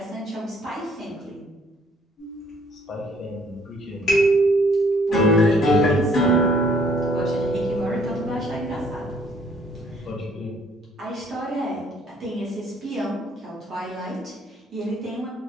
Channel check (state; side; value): normal; both; correlation 0.62